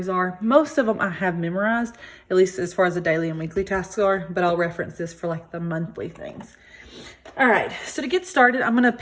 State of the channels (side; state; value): both; identical; correlation 1.00